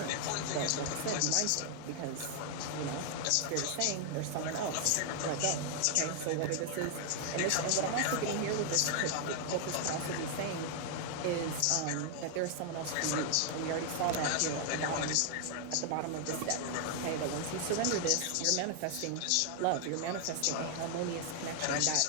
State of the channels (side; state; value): both; different; correlation 0.00